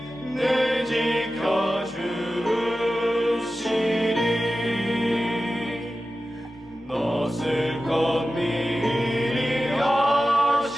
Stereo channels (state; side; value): normal; both; correlation 0.94